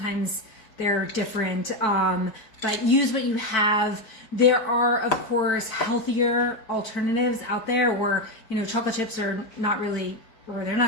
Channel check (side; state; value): right; late; 4.5 ms